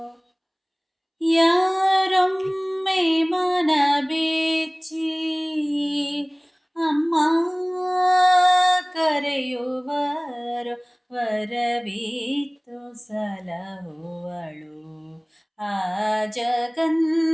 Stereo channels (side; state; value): both; identical; correlation 1.00